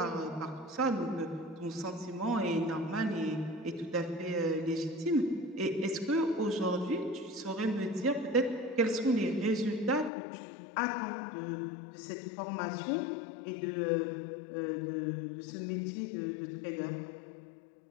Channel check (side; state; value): right; drops out; at 10.1 s